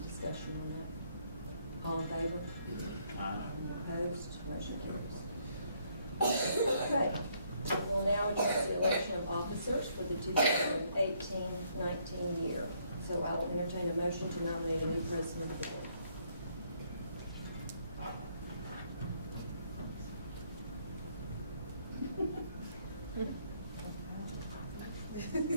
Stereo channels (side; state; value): both; inverted; correlation -0.70